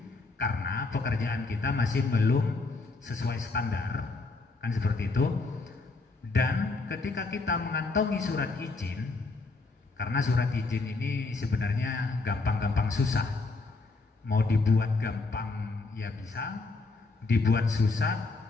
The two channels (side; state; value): right; quieter; 3.7 dB